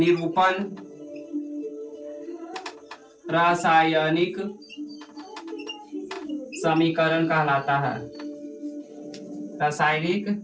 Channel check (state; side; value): identical; both; correlation 1.00